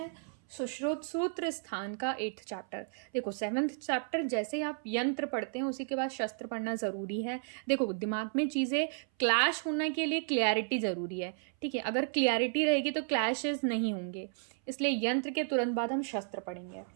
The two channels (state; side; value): silent; left; 56 dB below the other